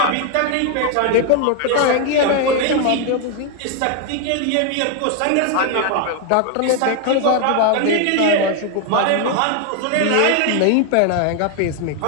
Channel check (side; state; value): both; different; correlation 0.01